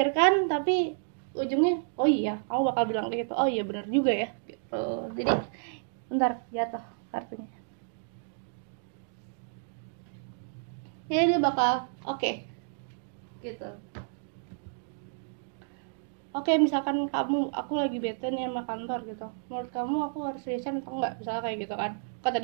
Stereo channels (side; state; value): left; silent; digital silence